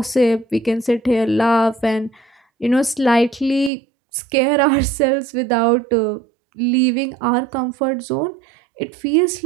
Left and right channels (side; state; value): left; drops out; at 3.7 s